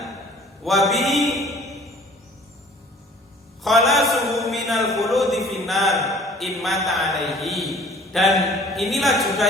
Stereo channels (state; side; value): normal; both; correlation 0.51